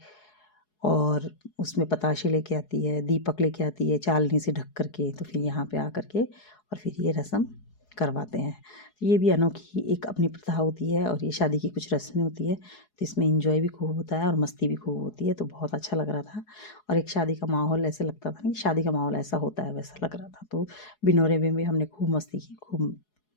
और उसमें पताशे लेके आती है, दीपक लेके आती है चालनी से ढक कर के। तो फिर यहाँ पे आ कर के और फिर ये रस्म करवाते हैं। ये भी अनोखी एक अपनी प्रथा होती है और ये शादी की कुछ रस्में होती है, तो इसमें एंजॉय भी खूब होता है और मस्ती भी खूब होती है। तो बहुत अच्छा लग रहा था और एक शादी का माहौल ऐसे लगता था कि शादी का माहौल ऐसा होता है वैसा लग रहा था। तो बिनोरे में भी हमने खूब मस्ती की, खूब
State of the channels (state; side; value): late; right; 4.7 ms